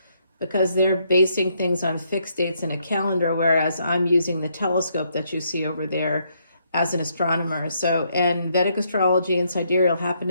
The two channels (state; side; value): inverted; both; correlation -0.74